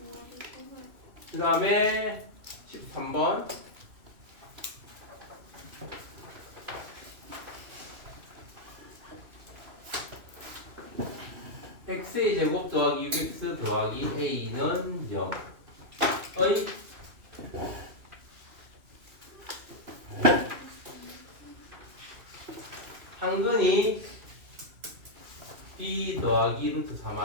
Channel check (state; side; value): late; left; 2.6 ms